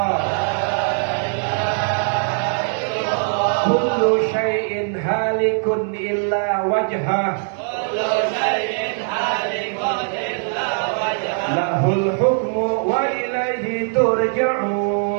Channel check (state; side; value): silent; left; 65 dB below the other